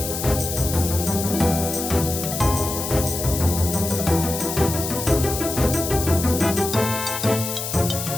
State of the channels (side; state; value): left; noise; hiss, 5 dB below the sound